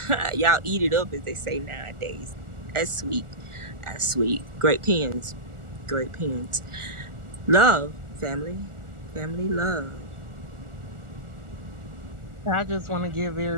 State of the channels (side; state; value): left; late; 1.4 ms